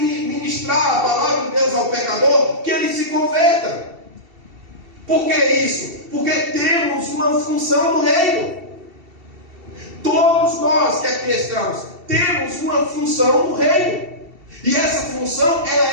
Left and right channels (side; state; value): left; late; 2.7 ms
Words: ministrar a palavra de Deus ao pecador, que ele se converta. Por que isso? Porque temos uma função no reino. Todos nós que aqui estamos temos uma função no reino. E essa função,